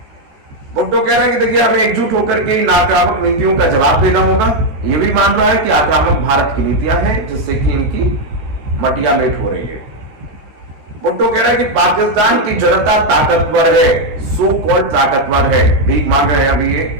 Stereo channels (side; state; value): left; late; 14 ms